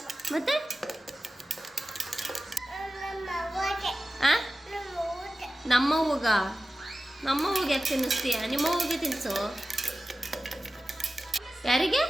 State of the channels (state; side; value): normal; both; correlation 0.95